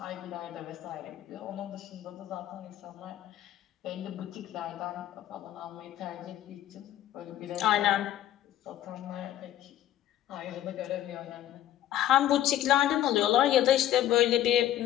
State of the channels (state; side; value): quieter; right; 12.5 dB